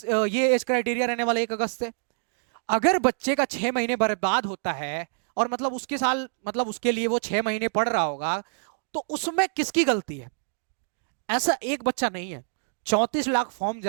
ये एज क्राइटेरिया रहने वाला 1 अगस्त से। अगर बच्चे का 6 महीने बर्बाद होता है, और मतलब उसके साल, मतलब उसके लिए वो 6 महीने पढ़ रहा होगा, तो उसमें किसकी गलती है। ऐसा एक बच्चा नहीं है, 34 लाख फॉर्म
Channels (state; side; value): silent; left; digital silence